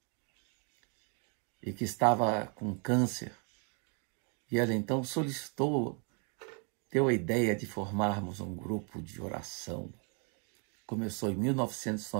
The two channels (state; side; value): quieter; left; 38.6 dB